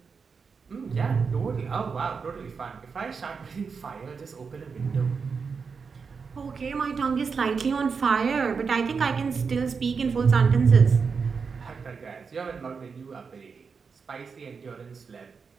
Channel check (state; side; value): quieter; left; 5.4 dB